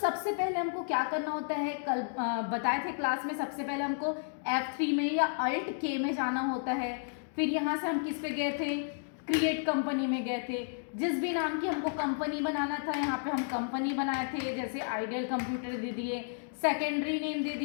पहले हमको क्या करना होता है, कल बताए थे क्लास में, सबसे पहले हमको F3 में या Alt K में जाना होता है। फिर यहाँ से हम किस पे गए थे, क्रिएट कंपनी में गए थे। जिस भी नाम की हमको कंपनी बनाना था यहाँ पे हम कंपनी बनाए थे, जैसे आइडियल कंप्यूटर दे दिए, सेकेंडरी नेम दे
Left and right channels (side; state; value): right; silent; digital silence